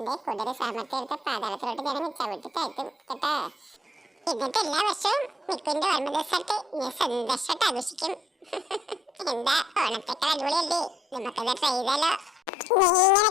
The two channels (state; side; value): normal; both; correlation 0.69